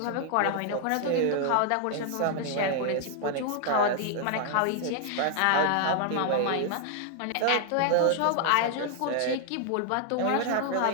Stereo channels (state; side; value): different; both; correlation 0.00